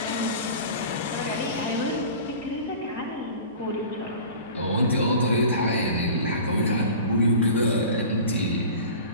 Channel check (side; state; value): both; inverted; correlation -0.38